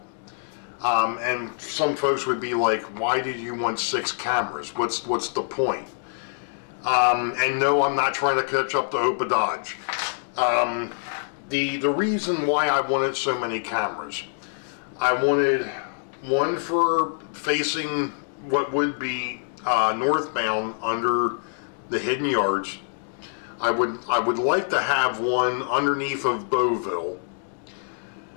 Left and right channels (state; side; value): silent; right; digital silence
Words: And some folks would be like, why did you want 6 cameras? What's the point? And no, I'm not trying to catch up to Opa Dodge. The reason why I wanted so many cameras, I wanted one for facing what would be northbound under the hidden yards. I would like to have one underneath of Boeville.